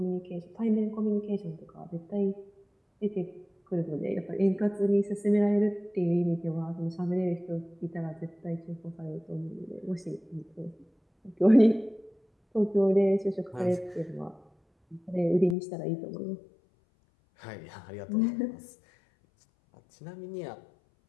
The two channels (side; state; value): right; drops out; at 15.6 s